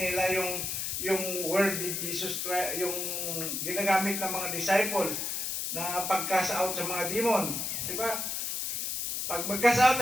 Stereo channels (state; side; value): noise; left; hiss, 2 dB below the sound